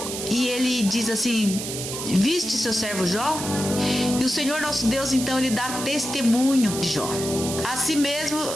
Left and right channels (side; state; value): right; noise; hiss, 6 dB below the sound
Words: e ele diz assim: viste seu servo Jó? E o Senhor nosso Deus, então, ele dá testemunho de Jó. Assim